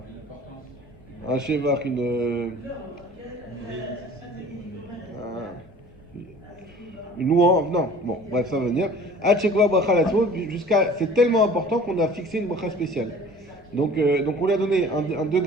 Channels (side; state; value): left; noise; rumble, 26 dB below the sound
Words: un shevach, une louange, non, bon, bref, ça va venir. C'est tellement important qu'on a fixé une bracha spéciale. Donc on lui a donné un